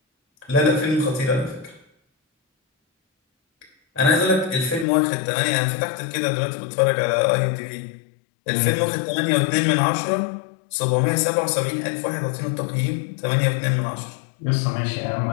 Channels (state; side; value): drops out; right; at 4.9 s